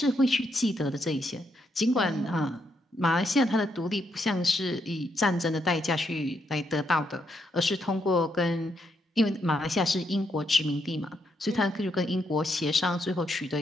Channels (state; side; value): normal; both; correlation 0.78